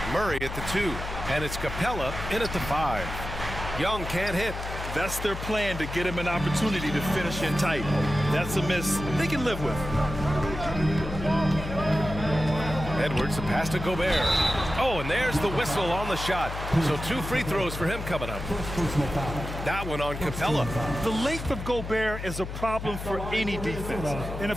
Murray at the 2. And it's Capella in at the 5. Young can't hit. That's their plan, to get him an opportunity to finish in tight. That's a miss they can live with. Edwards, the pass to Gobert. Oh, and there's the whistle on the shot. So 2 free throws for him coming up. That one on Capella. The length of Gobert is a problem for any defense. And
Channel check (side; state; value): left; noise; hum, 7 dB below the sound